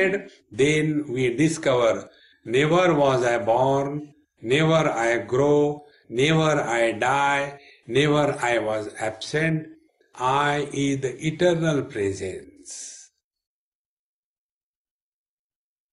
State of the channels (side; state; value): both; identical; correlation 1.00